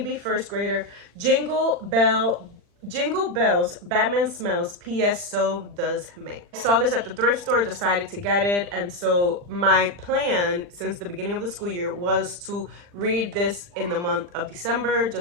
First Grader, Jingle Bells, Batman Smells, P.S. So Does May. I saw this at the thrift store, decided to get it, and so my plan since the beginning of the school year was to read this in the month of December,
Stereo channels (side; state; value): left; late; 40 ms